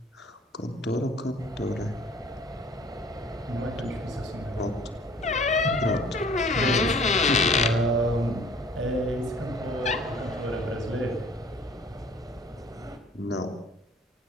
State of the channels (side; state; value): both; normal; correlation 0.52